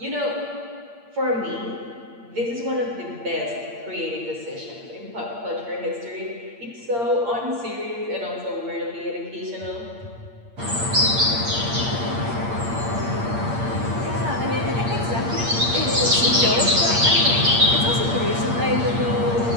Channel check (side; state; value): left; late; 8.6 ms